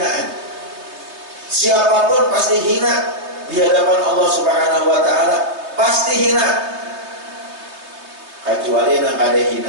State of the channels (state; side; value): late; left; 3.2 ms